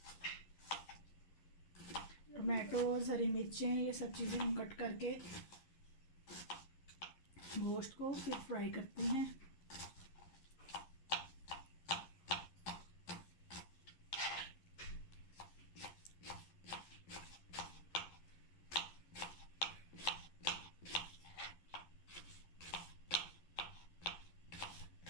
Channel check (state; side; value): late; right; 11 ms